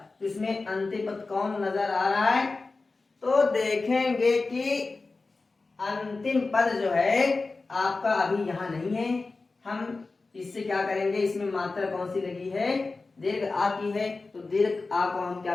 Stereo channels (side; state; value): right; quieter; 3.7 dB